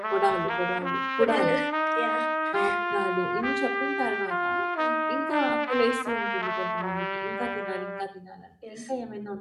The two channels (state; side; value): identical; both; correlation 1.00